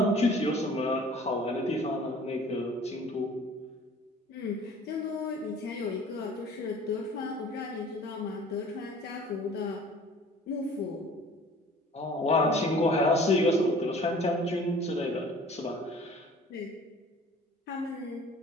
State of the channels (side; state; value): both; normal; correlation 0.48